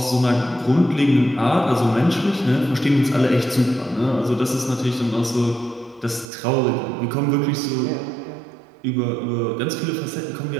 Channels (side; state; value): left; drops out; at 6.3 s